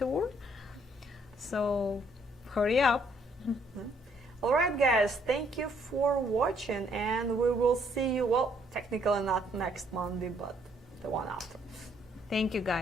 So hurry up. All right, guys, thank you for watching, and we will see you, well, technically not next Monday, but the one after. Thank you,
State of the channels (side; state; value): both; normal; correlation 0.67